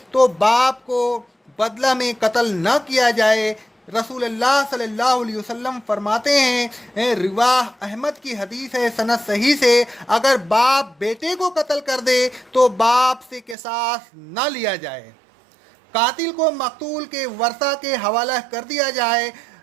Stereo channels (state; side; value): drops out; left; at 13.6 s